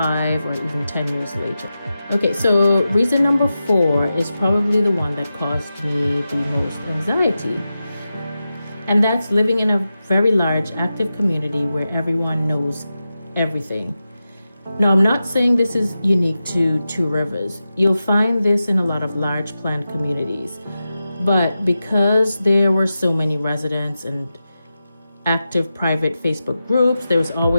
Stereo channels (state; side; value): inverted; both; correlation -0.92